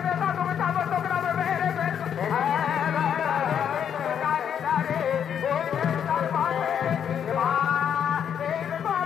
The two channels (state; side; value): quieter; right; 8.5 dB